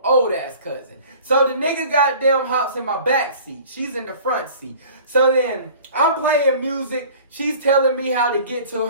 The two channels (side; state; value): both; inverted; correlation -0.46